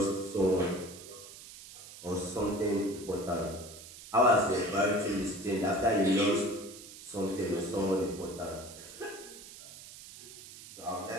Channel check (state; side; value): noise; right; hiss, 16 dB below the sound